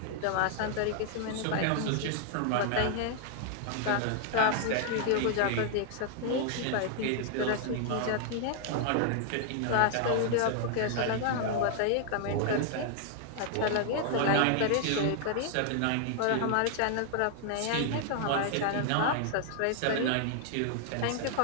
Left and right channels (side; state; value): both; different; correlation 0.00